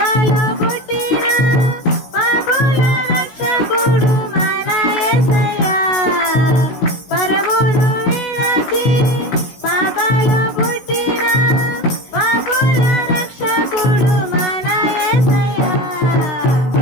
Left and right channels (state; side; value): late; right; 16 ms